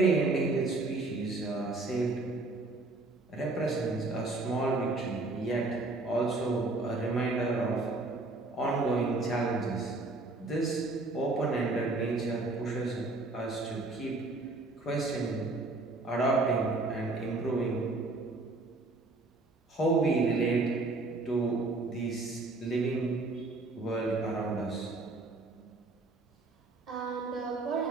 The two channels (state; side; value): quieter; left; 3.2 dB